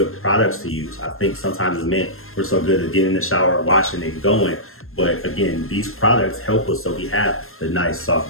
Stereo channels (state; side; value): late; right; 0.61 ms